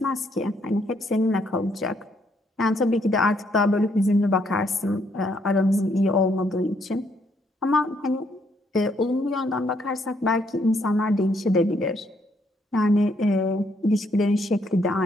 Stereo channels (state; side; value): normal; both; correlation 0.71